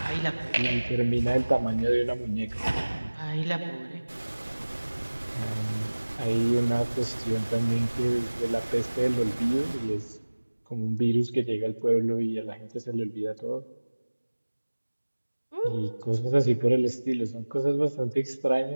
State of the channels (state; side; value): inverted; both; correlation -1.00